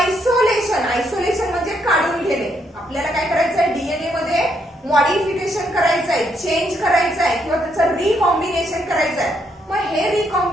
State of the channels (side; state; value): both; normal; correlation 0.75